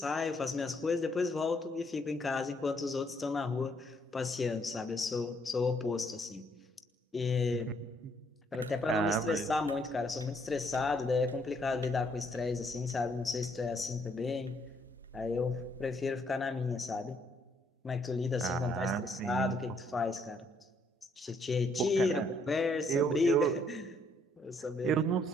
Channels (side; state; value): both; normal; correlation 0.69